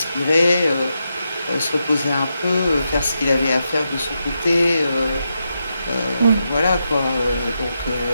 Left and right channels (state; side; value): inverted; both; correlation -0.85